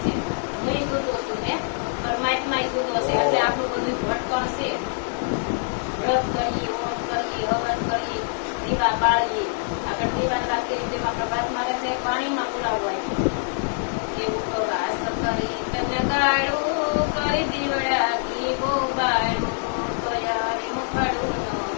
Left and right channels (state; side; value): silent; right; 62 dB below the other